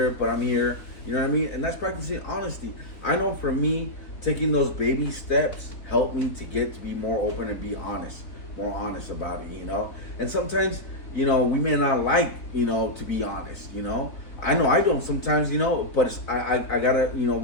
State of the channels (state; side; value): late; right; 4.0 ms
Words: but I'm here, you know what I mean? And that's practicing honesty. I know for me, taking those baby steps helped me to get to be more open and be honest, more honest about it, you know? And sometimes, you know, we may not like, you know, to be honest, you know? I know I don't sometimes, you know, but I gotta, you know,